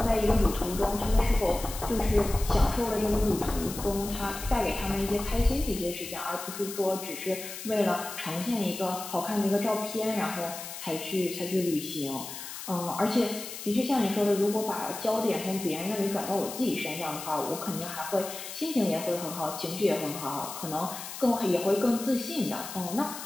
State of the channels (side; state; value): left; noise; hiss, 10 dB below the sound